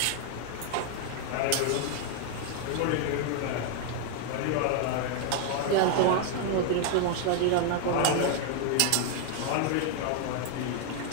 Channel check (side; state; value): both; different; correlation 0.00